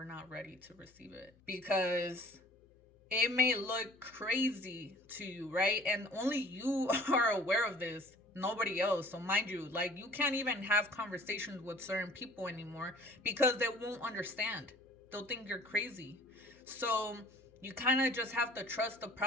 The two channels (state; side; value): noise; left; hum, 30 dB below the sound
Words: not ready to receive it because it may look crazy to you, right? And only you are aware of this, nobody else. So mind you, like, you can't even have conversations with certain people anymore because they won't understand. They'll think you're crazy. So you kind of just have to trust the